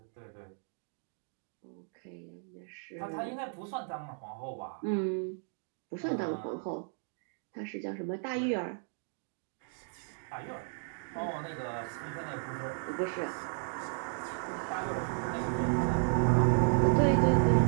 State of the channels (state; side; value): silent; left; 55 dB below the other